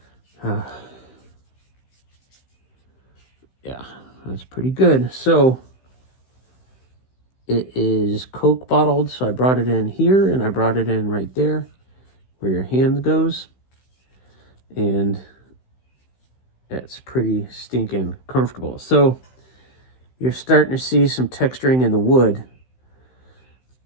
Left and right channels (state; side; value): late; right; 16 ms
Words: Yeah, that's pretty good. So it is Coke bottled. So I brought it in here and I brought it in right there where your hand goes. And it's pretty stinking comfortable. So you're starting to see some texturing in the wood.